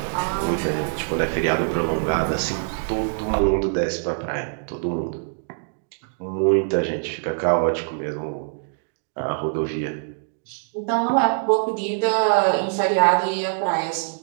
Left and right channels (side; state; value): left; silent; digital silence